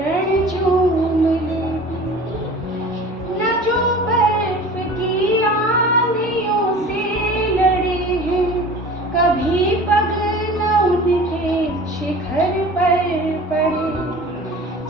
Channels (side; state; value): both; normal; correlation 0.41